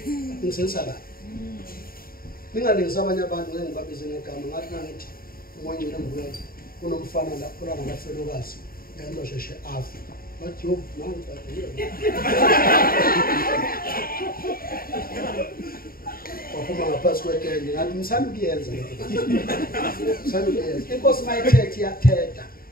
kahle. Ningalengisa abanye abantu ngeke ngibabize ngegama ngathi nangithi umoya ngene ngibuyela kunomfana la khona ngamafelokazi yento sheshe afa. Bathi yo nanti waphuma ngaphansi kwetende ngathi ngisanda ukuyenza inkosi mayithethe iyathetha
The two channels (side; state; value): right; late; 0.43 ms